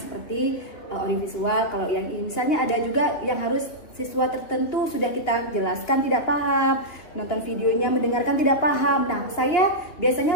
audiovisual. Kalau yang ini misalnya ada juga yang harus siswa tertentu sudah kita jelaskan tidak paham, nonton videonya mendengarkan tidak paham. Nah, saya biasanya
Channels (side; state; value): right; late; 2.9 ms